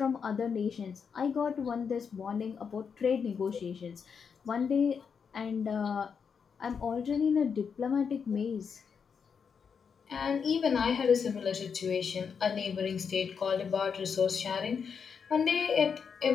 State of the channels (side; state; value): right; quieter; 6.4 dB